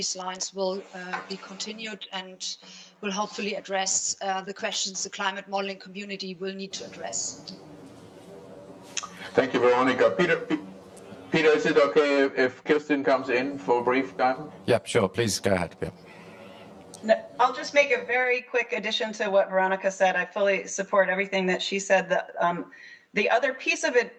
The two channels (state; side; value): identical; both; correlation 1.00